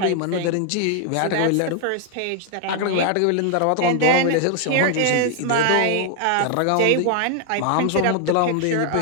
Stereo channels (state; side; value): different; both; correlation 0.00